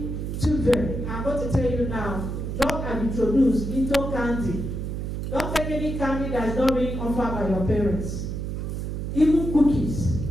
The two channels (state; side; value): noise; right; hum, 4 dB below the sound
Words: children. I'm going to tell you now, drugs are introduced into candy. Don't take any candy that is not being offered by your parents. Even cookies.